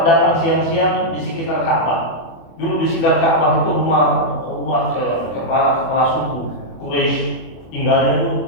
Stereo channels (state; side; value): late; right; 24 ms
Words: datang siang-siang di sekitar Ka'bah. Dulu di sekitar Ka'bah itu rumah kepala suku Quraisy tinggalnya